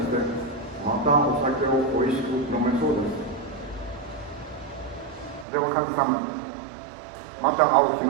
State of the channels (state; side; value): drops out; left; at 5.5 s